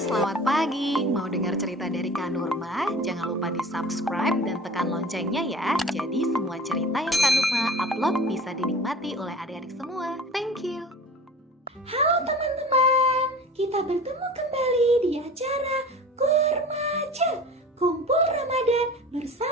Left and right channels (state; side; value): normal; both; correlation 0.40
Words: selamat pagi. Mau dengar cerita dari Kak Nurma? Jangan lupa di-subscribe dan tekan loncengnya ya. Jadi semua cerita yang Kak Nurma upload bisa dinikmati oleh adik-adik semua. Thank you. Halo teman-teman, kita bertemu kembali di acara Kurmaja Kumpul Ramadan